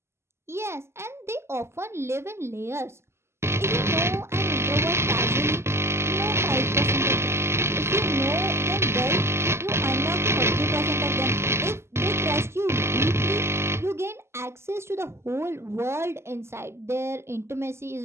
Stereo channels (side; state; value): left; late; 0.13 ms